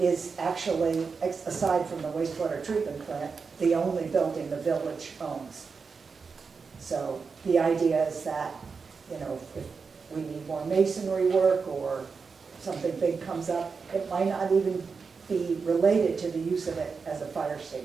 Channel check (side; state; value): left; quieter; 5.1 dB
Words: actually, aside from the wastewater treatment plant, the only building the village owns. So the idea is that, you know, if we need more masonry work or something big comes up, it might not even be related to the use of it as a fire